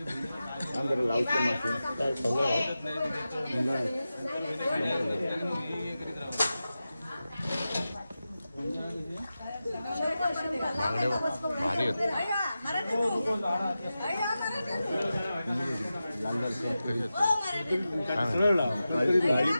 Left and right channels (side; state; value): both; inverted; correlation -0.93